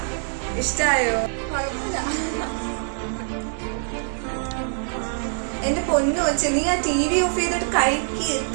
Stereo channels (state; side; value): silent; left; 63 dB below the other